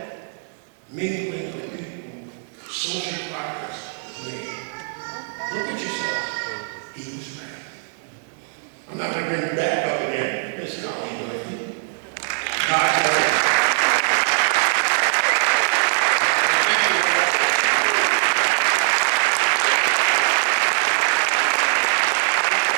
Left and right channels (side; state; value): left; silent; digital silence